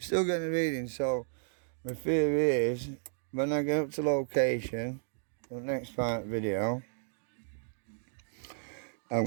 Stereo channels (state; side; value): silent; left; digital silence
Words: getting a reading, so my theory is when I get up to location, the next part video, I'm